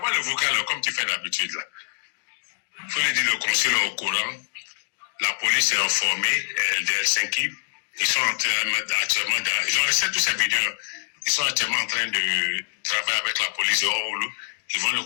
le vocal comme tu fais d'habitude là. Faut lui dire le consul est au courant, la police est informée de Helsinki, ils sont actuellement dans, ils ont laissé toutes ces vidéos, ils sont actuellement en train de travailler avec la police de Oulu, ils vont le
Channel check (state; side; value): silent; right; digital silence